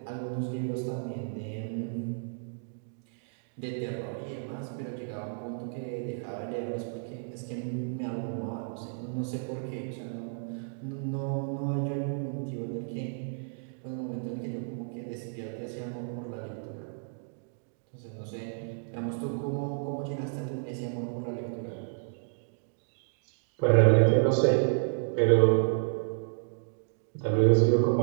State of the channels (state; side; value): silent; left; digital silence